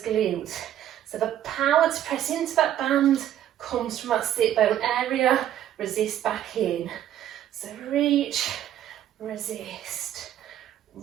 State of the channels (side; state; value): left; quieter; 11.5 dB